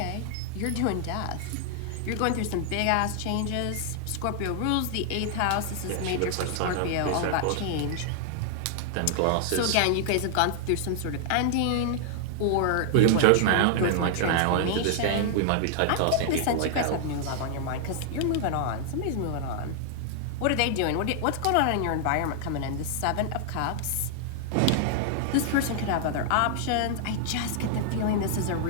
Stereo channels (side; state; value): both; different; correlation 0.00